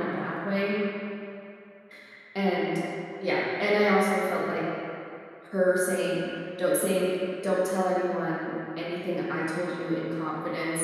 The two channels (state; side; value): identical; both; correlation 1.00